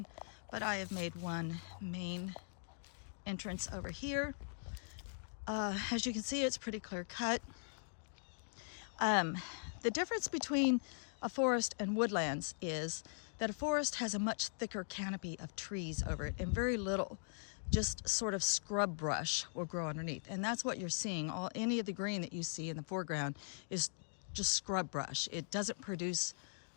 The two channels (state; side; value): silent; right; digital silence